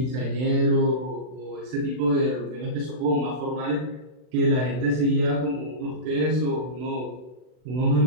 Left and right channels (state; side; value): late; left; 39 ms